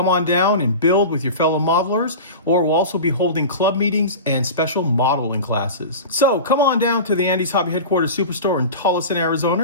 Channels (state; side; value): inverted; both; correlation -0.31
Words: on down and build with your fellow modelers, or we'll also be holding club meetings and special modeling classes. So come on down to the Andy's Hobby Headquarters Superstore in TOLLESON,